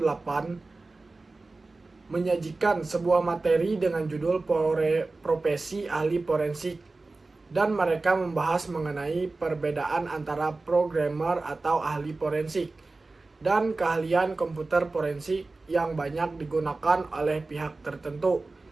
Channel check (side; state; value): left; quieter; 3.4 dB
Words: menyajikan sebuah materi dengan judul profesi ahli forensik, dan mereka membahas mengenai perbedaan antara programmer atau ahli forensik dan keahlian komputer forensik yang banyak digunakan oleh pihak tertentu